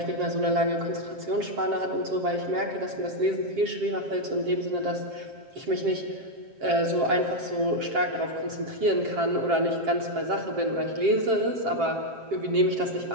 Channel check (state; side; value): late; left; 7.5 ms